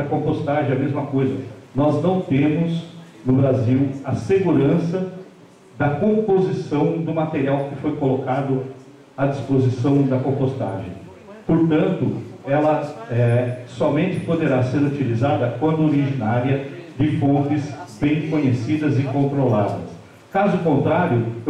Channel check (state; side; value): identical; both; correlation 1.00